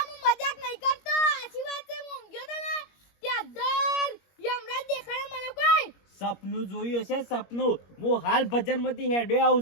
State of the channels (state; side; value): late; right; 21 ms